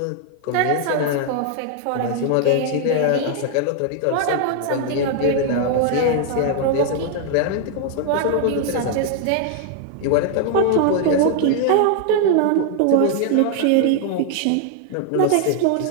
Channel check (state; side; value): different; both; correlation 0.00